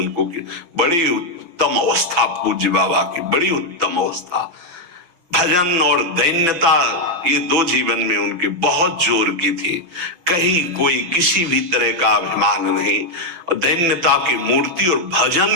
बड़ी उत्तम अवस्था पूज्य बाबा की, बड़ी उत्तम अवस्था। भजन और दैन्यता, ये 2 जीवन में उनके बहुत जोर की थी। कहीं कोई किसी भी तरह का अभिमान नहीं, और दैन्यता की मूर्ति। और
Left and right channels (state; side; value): late; left; 5.9 ms